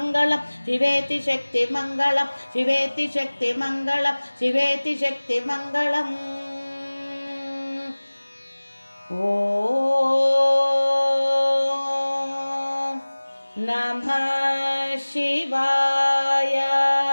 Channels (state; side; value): inverted; both; correlation -1.00